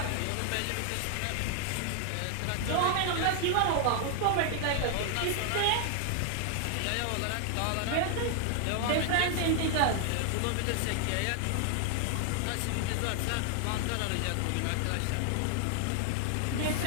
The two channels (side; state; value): both; different; correlation 0.00